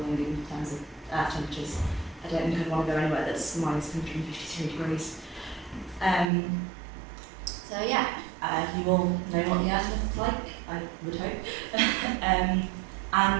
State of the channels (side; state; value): left; drops out; at 6.3 s